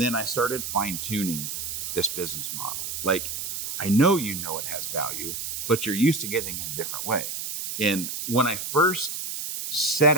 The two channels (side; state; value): right; noise; hiss, 5 dB below the sound